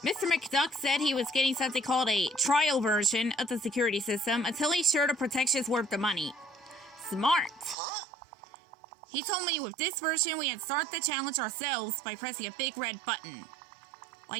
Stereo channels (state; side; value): drops out; left; at 7.8 s